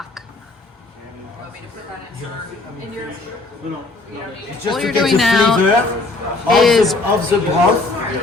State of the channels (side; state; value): right; quieter; 3.2 dB